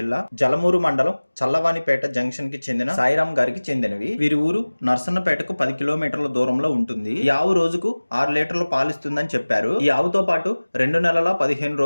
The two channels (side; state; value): both; inverted; correlation -1.00